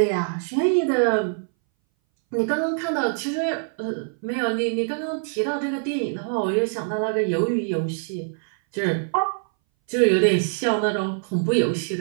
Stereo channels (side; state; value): left; silent; 60 dB below the other